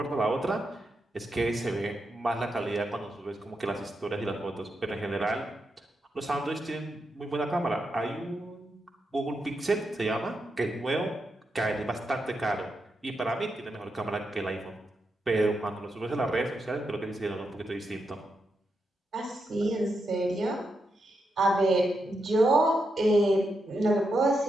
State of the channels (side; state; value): both; normal; correlation 0.84